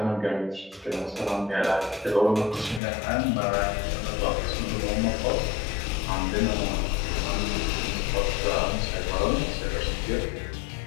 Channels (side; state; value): right; drops out; at 2.8 s